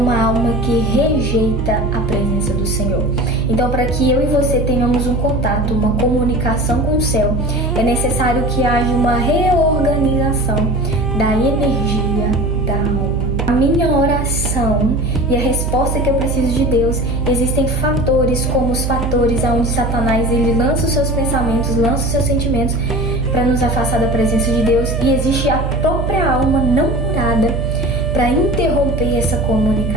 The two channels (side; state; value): right; noise; hum, 2 dB below the sound